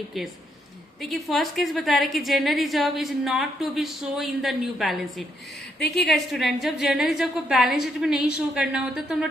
case. देखिए first case बता रहे कि general reserve is not to be show in the new balance sheet. देखिएगा स्टूडेंट, जब general reserve को balance sheet में नहीं show करना होता तो हम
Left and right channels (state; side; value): normal; both; correlation 0.76